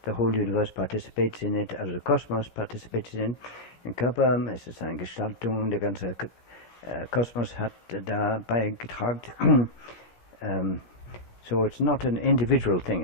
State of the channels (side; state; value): right; late; 17 ms